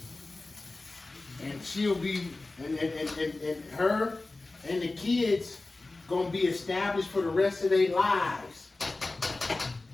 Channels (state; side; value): quieter; right; 3.2 dB